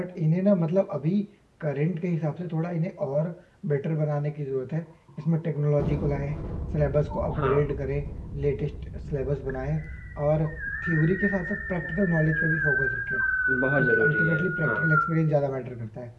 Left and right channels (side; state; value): both; identical; correlation 1.00